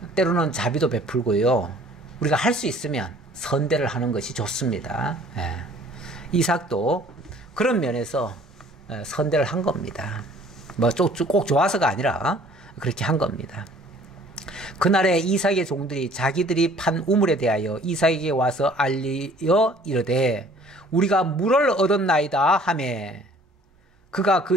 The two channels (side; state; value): both; normal; correlation 0.54